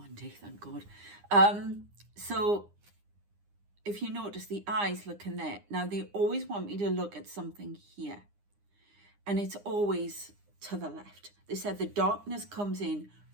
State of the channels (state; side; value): late; left; 9.8 ms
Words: day, thank God. So if you notice, the eyes look in there. Now they always want me to look at something here, and it's always to the left. They said the darkness comes in